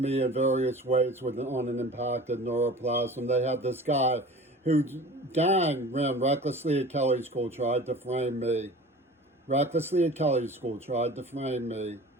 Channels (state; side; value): normal; both; correlation 0.40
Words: in various ways on an impacted neuroplasm. They had this guy whose gang ran recklessly at Kelley School, tried to frame me. Recklessly at Kelley School, tried to frame me.